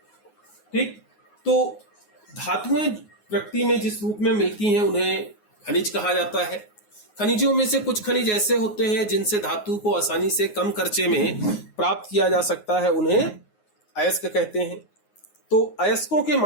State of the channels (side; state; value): right; late; 9.5 ms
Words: ठीक, तो धातुएं प्रकृति में जिस रूप में मिलती हैं उन्हें खनिज कहा जाता है। खनिजों में से कुछ खनिज ऐसे होते हैं जिनसे धातु को आसानी से कम खर्चे में प्राप्त किया जा सकता है, उन्हें अयस्क कहते हैं। तो अयस्कों के